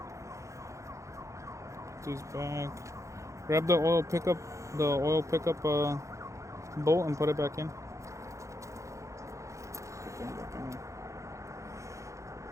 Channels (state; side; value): late; left; 0.15 ms